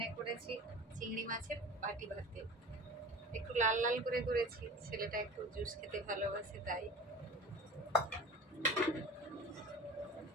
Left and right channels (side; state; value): both; normal; correlation 0.36